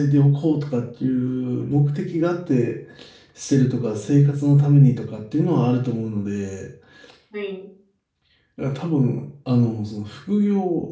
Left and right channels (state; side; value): identical; both; correlation 1.00